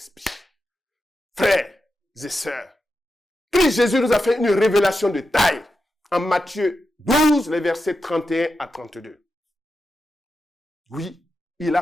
Frères et sœurs, Christ Jésus nous a fait une révélation de taille en Matthieu 12, les versets 31 à 32. Oui, il a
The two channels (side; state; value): both; normal; correlation 0.89